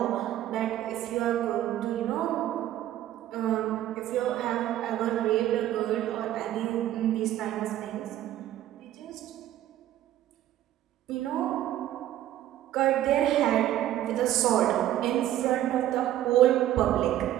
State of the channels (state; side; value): quieter; left; 12.9 dB